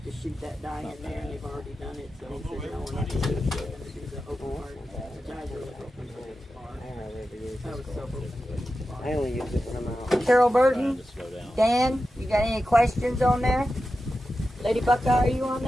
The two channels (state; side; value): normal; both; correlation 0.92